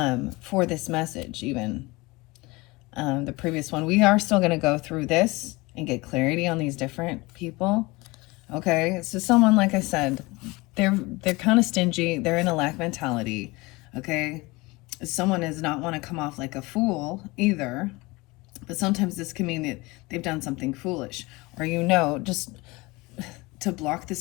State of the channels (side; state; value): right; quieter; 23.1 dB